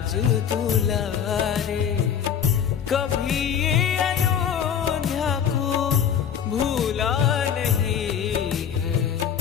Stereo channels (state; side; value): quieter; right; 8.3 dB